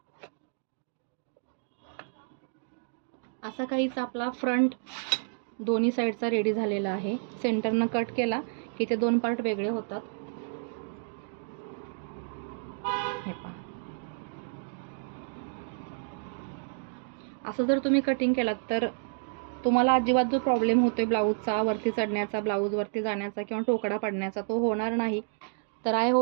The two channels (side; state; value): left; silent; digital silence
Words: असा काहीच आपला फ्रंट दोन्ही साईडचा रेडी झालेला आहे. सेंटरनं कट केला की ते 2 पार्ट वेगळे होतात. हे पहा, असं जर तुम्ही कटिंग केलात तर तुम्हाला अजिबात जो प्रॉब्लेम होतोय ब्लाऊजचा वरती चढण्याचा, ब्लाऊज वरती जाण्याचा किंवा टोकडा पडण्याचा तो होणार नाही. तर आय